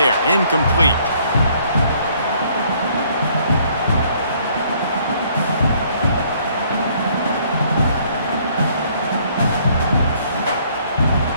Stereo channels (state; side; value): inverted; both; correlation -0.63